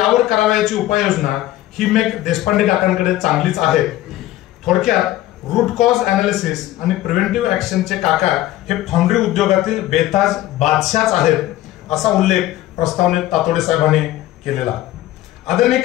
करावयाची उपाययोजना ही मेक देशपांडे काकांकडे चांगलीच आहे। थोडक्यात रूट कॉज अनालिसिस आणि प्रिव्हेंटिव्ह ऍक्शनचे काका हे फाउंड्री उद्योगातील बेताज बादशाहच आहेत असा उल्लेख प्रस्तावनेत तातोडे साहेबांनी केलेला। आदरणीय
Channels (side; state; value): right; quieter; 14.9 dB